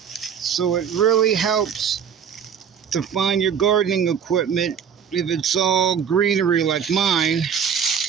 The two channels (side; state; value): left; quieter; 7.6 dB